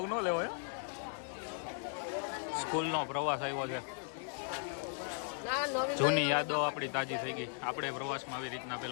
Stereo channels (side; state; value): right; silent; 53 dB below the other